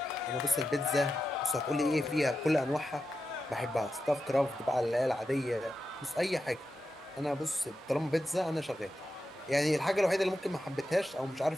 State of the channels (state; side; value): normal; both; correlation 0.90